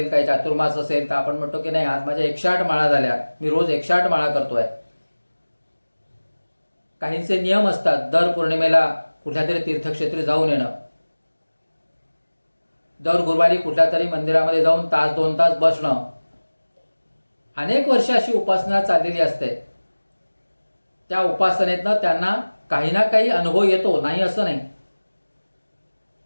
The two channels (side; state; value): both; inverted; correlation -1.00